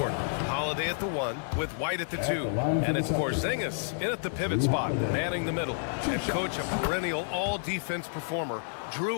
Holiday at the 1 with White at the 2. And it's Porzingis in at the pivot spot, manning the middle. And coach, a perennial all-defense performer,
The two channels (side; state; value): right; silent; digital silence